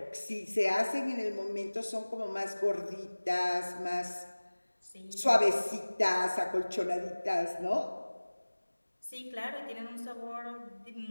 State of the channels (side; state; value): both; inverted; correlation -1.00